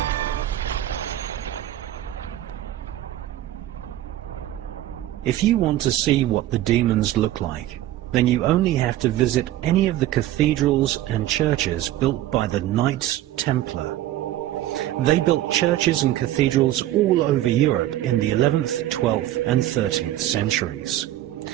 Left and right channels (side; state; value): left; quieter; 13.9 dB